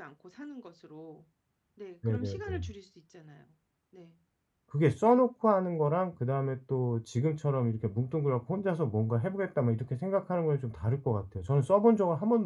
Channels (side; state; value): both; identical; correlation 1.00